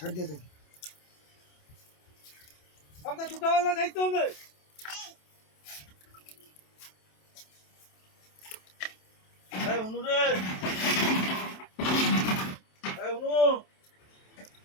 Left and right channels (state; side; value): late; right; 27 ms